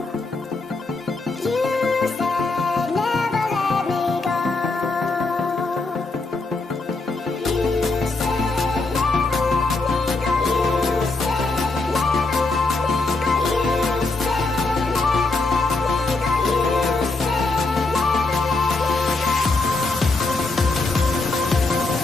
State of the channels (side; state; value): right; quieter; 3.5 dB